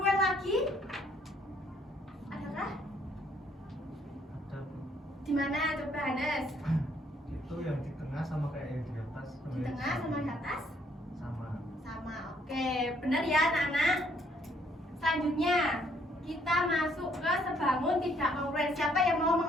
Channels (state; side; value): normal; both; correlation 0.67